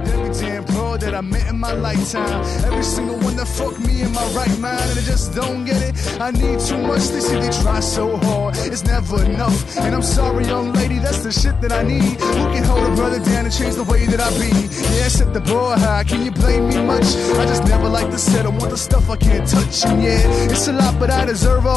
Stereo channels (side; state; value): right; quieter; 5.1 dB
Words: every damn bro that I met in my lifetime. Every single one that fucked me in my right mind, and I just don't get it. I need too much. They say they try so hard, it's never enough. And I'm sorry, young lady, that's the shit that I need. Who can hold a brother down and change the way that I be? Yeah, set the bar high. Can you blame me much? I just never like to settle. Want the stuff I can't touch. And yeah, it's a lot, but I deserve